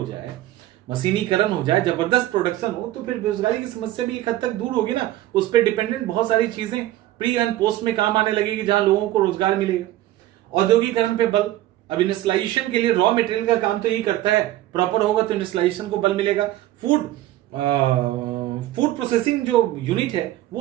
जाए, मशीनीकरण हो जाए, जबरदस्त प्रोडक्शन हो, तो फिर बेरोजगारी की समस्या भी एक हद तक दूर होगी ना। उस पर डिपेंडेंट बहुत सारी चीजें प्री एंड पोस्ट में काम आने लगेगी, जहां लोगों को रोजगार मिलेगा। औद्योगिकरण पे बल। अब इंडस्ट्रियलाइजेशन के लिए रॉ मटेरियल का काम तो यही करता है, प्रॉपर होगा तो इंडस्ट्रियलाइजेशन को बल मिलेगा। फूड प्रोसेसिंग जो यूनिट है वो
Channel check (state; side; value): quieter; left; 14.9 dB